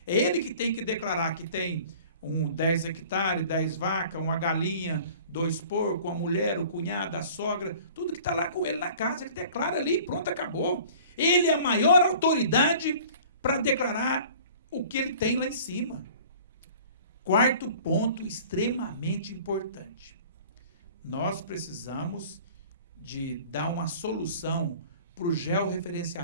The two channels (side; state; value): both; inverted; correlation -0.46